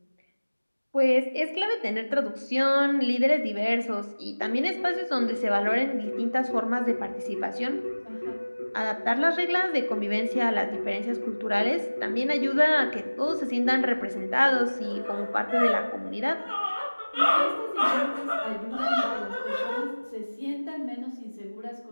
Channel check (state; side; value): inverted; both; correlation -1.00